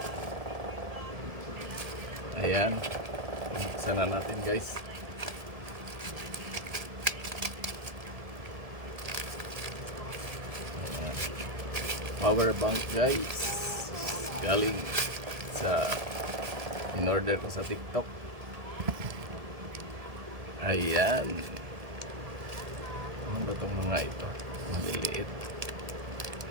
Ayan, buksan na natin guys. Power bank guys, galing sa in-order ko sa TikTok. Ayan, ano ba itong mga ito? Maliliit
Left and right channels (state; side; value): late; left; 1.7 ms